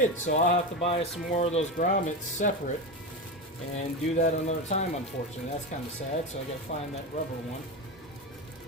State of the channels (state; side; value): normal; both; correlation 0.19